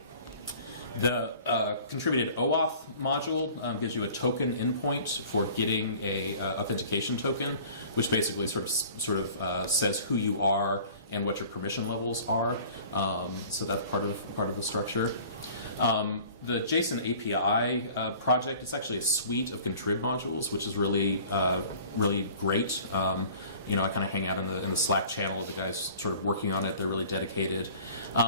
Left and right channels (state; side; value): inverted; both; correlation -0.47